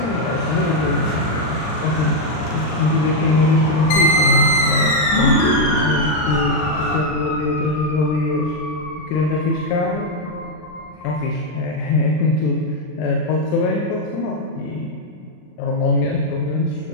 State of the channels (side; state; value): right; late; 39 ms